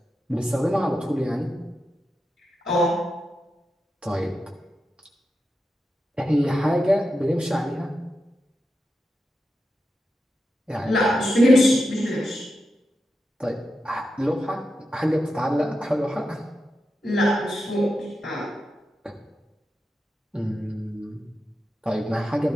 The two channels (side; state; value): both; normal; correlation 0.89